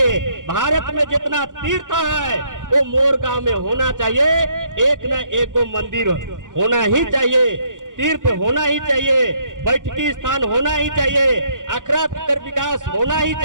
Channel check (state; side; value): late; left; 0.87 ms